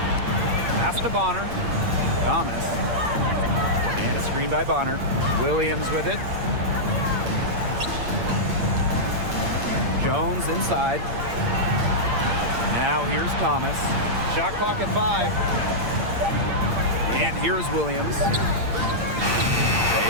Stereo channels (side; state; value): left; late; 8.7 ms